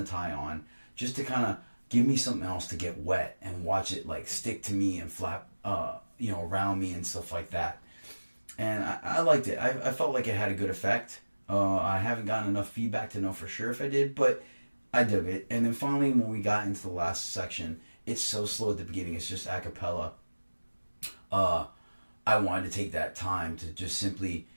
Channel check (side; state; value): both; inverted; correlation -1.00